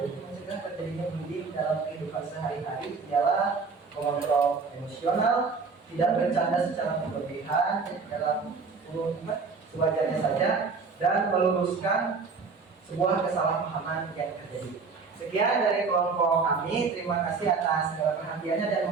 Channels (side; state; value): left; quieter; 4.8 dB